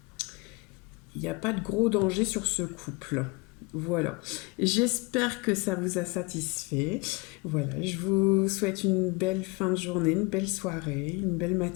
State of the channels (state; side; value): quieter; right; 27.1 dB